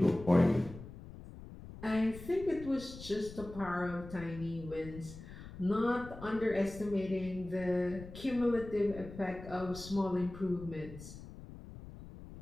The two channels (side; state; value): left; noise; rumble, 14 dB below the sound